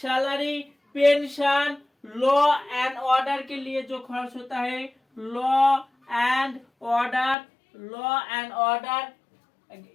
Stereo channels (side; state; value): right; drops out; at 7.4 s